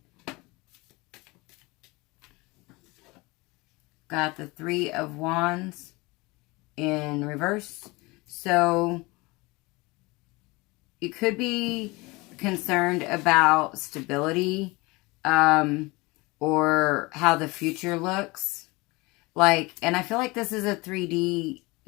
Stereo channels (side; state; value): right; quieter; 23.9 dB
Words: Got the Three of Wands in reverse. So you could be concerned about stability or how the future looks. Like, and I feel like this is a 3D